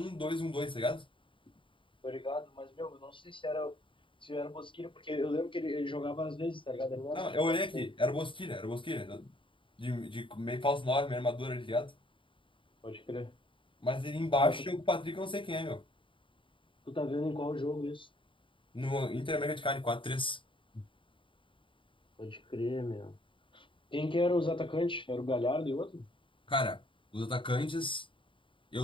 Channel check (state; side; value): late; right; 0.25 ms